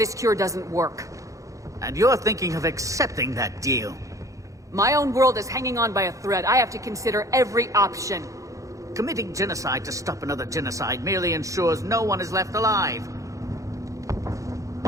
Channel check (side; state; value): left; late; 0.16 ms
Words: cure doesn't work. And you're thinking of accepting that deal. My own world is hanging on by a thread. I have to consider every option. Committing genocide to stop another genocide merely ensures no one is left alive.